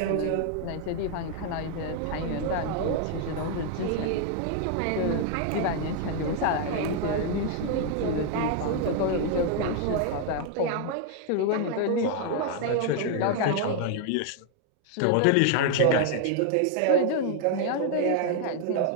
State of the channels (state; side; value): different; both; correlation 0.00